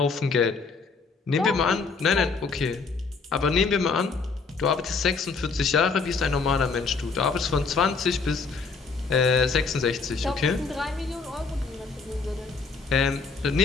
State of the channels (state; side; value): quieter; right; 4.7 dB